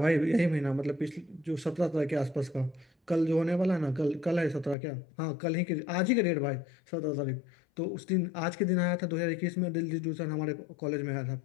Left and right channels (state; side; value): drops out; right; at 4.8 s